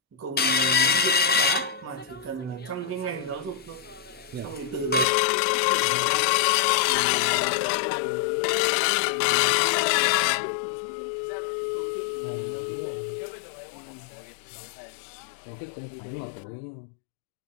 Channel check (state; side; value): drops out; right; at 5.1 s